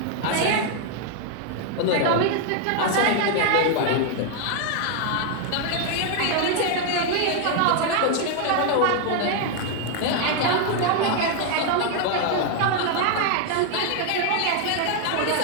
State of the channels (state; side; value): different; both; correlation 0.00